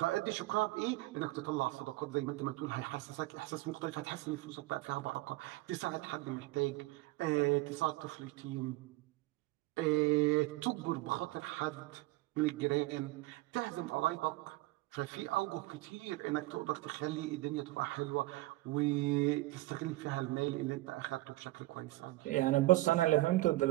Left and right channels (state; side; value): quieter; left; 19.0 dB